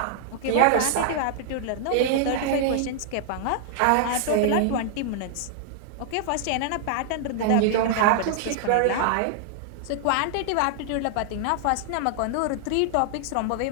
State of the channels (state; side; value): different; both; correlation -0.01